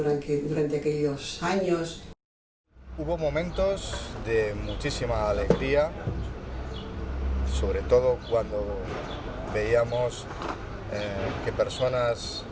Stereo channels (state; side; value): identical; both; correlation 1.00